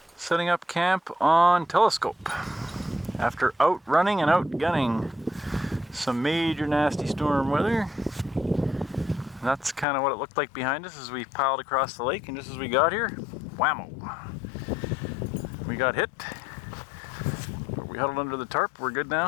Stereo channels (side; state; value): right; drops out; at 9.9 s